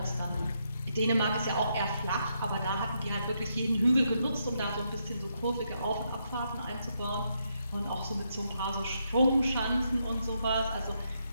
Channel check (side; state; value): both; inverted; correlation -0.79